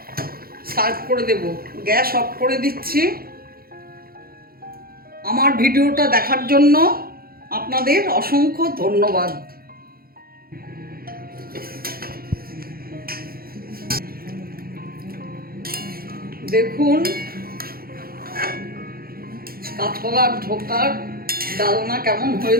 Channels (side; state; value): left; late; 0.43 ms